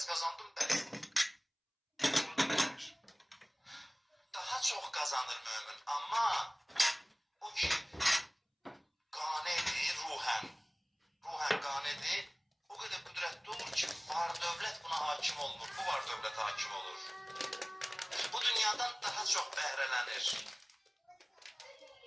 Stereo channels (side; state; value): both; identical; correlation 1.00